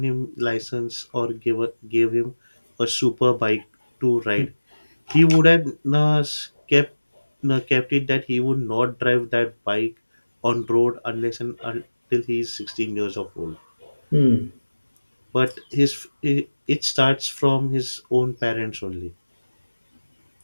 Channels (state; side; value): inverted; both; correlation -1.00